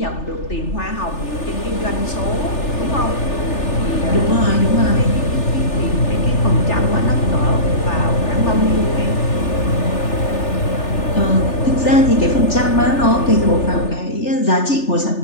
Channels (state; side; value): late; right; 3.4 ms